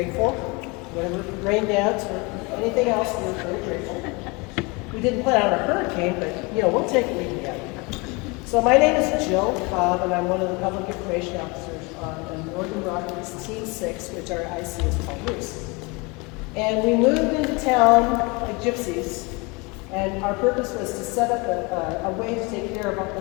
Whatever rain dance or anything else, we're very grateful. We didn't plan on a hurricane, but we'll take what we can get. So my name is Jill Cobb, and I'm one of the public information officers on Northern Rockies Team 6, which our IC is Paul Roos. And we moved into town like gypsies, and our purpose was to set up a way to take care of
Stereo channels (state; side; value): quieter; right; 27.8 dB